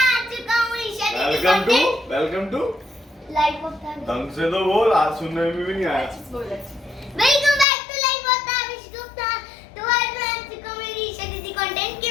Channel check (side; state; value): right; drops out; at 7.7 s